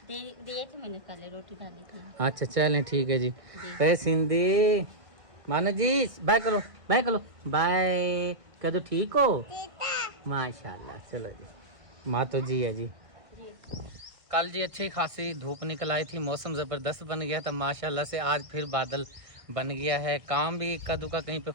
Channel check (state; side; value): late; left; 1.6 ms